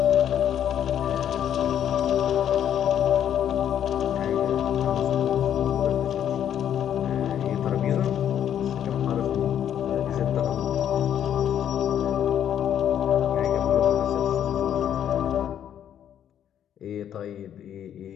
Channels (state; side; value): quieter; right; 9.9 dB